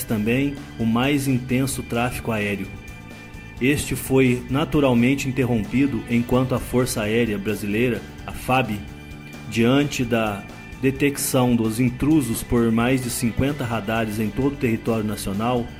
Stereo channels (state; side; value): identical; both; correlation 1.00